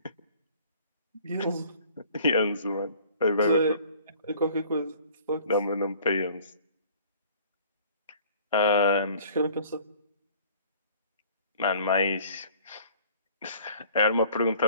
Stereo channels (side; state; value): both; inverted; correlation -0.52